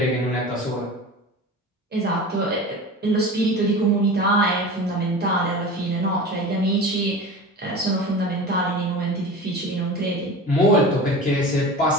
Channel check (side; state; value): both; normal; correlation 0.33